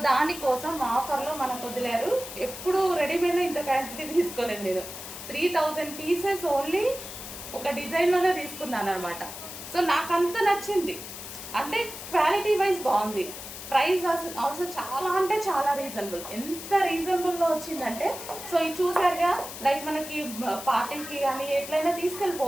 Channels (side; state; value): left; noise; hiss, 11 dB below the sound